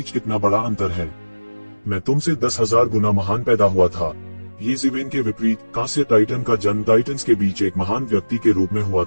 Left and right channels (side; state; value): both; inverted; correlation -1.00